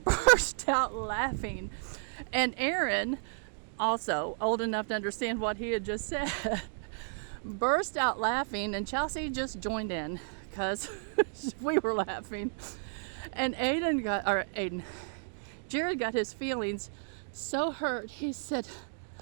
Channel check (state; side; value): silent; left; digital silence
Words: burst out laughing. And Aaron, also old enough to understand what he had just said, burst out laughing, and Chelsea just joined in because we were laughing. And Jared got his feelings so hurt. He said,